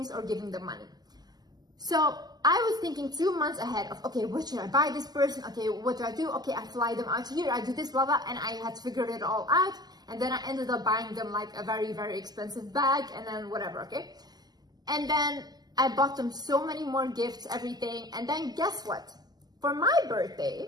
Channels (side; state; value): left; late; 0.20 ms